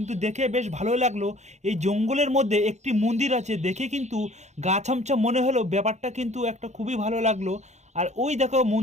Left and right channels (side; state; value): left; late; 0.33 ms